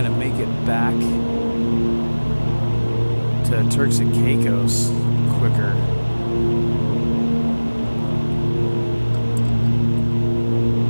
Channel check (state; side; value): inverted; both; correlation -1.00